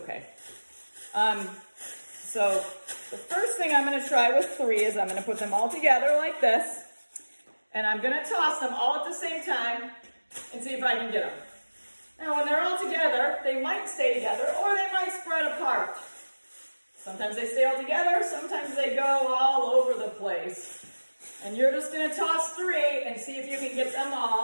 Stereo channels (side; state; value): both; inverted; correlation -1.00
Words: So the first thing I'm going to try with 3 is I'm going to put them all together like this. And I'm going to toss them all at the same time and see if I can get them. Now when they're all together, they might stay together or they might spread apart. Sometimes they stay all together, sometimes they go all over the place. And you're just going to toss 3 and see if you can get them